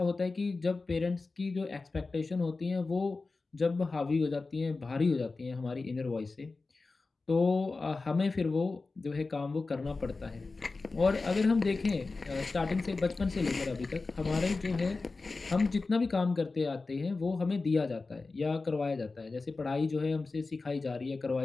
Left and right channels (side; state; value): right; quieter; 3.8 dB